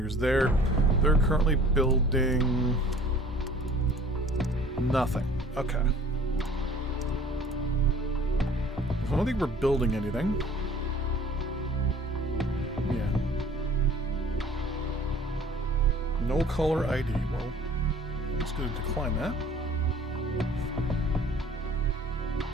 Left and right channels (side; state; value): both; normal; correlation 0.51